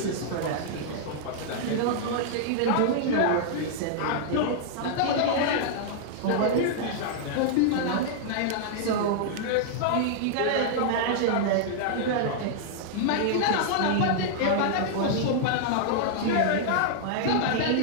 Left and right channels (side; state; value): both; different; correlation -0.01